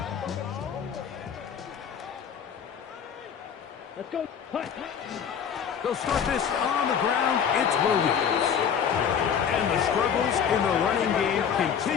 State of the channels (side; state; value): right; quieter; 7.7 dB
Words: Let's go. They'll start this on the ground. It's Williams. And the struggles in the running game